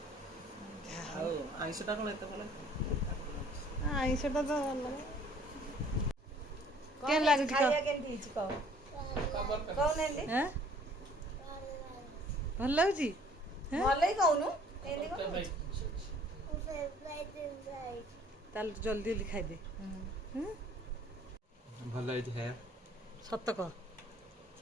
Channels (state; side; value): normal; both; correlation 0.56